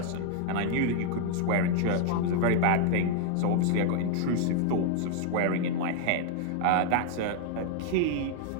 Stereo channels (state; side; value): different; both; correlation 0.00